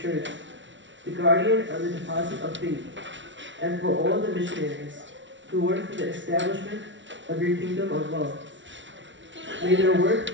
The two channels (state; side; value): late; left; 0.55 ms